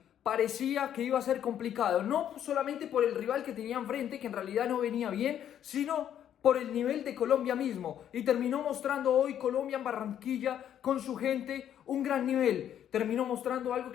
parecía que iba a ser complicado, no solamente por el rival que tenía enfrente, que en realidad no venía bien, sino por el nivel de Colombia mismo. Y terminó mostrando hoy Colombia en Barranquilla con su gente un gran nivel. Terminó mostrando algo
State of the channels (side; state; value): right; quieter; 10.1 dB